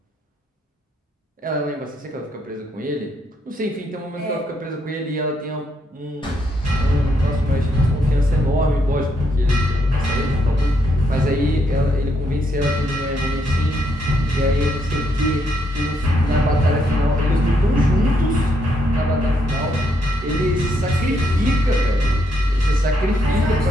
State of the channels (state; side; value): normal; both; correlation 0.76